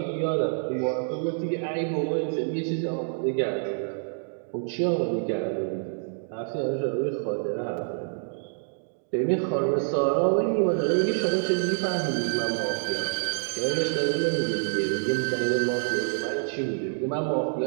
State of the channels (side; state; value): left; silent; digital silence